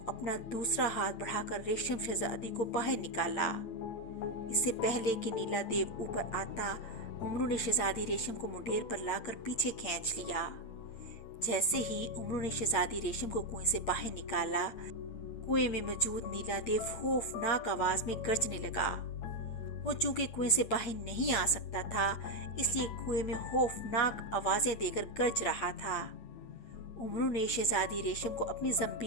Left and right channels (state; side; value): late; right; 8.9 ms